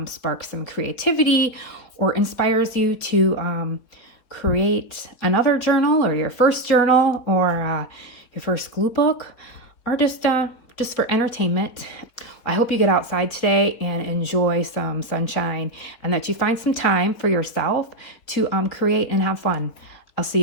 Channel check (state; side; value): late; right; 4.0 ms